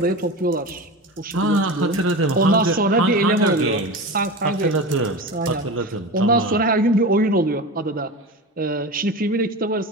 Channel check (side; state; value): both; normal; correlation 0.28